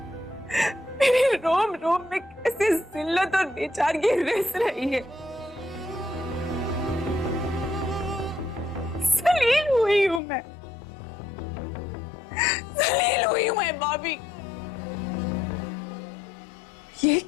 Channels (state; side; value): drops out; right; at 10.2 s